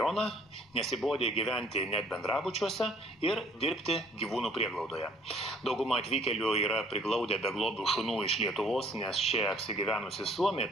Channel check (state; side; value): normal; both; correlation 0.58